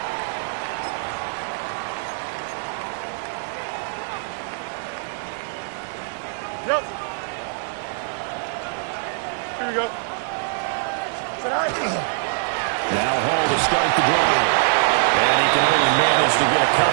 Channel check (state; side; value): silent; left; digital silence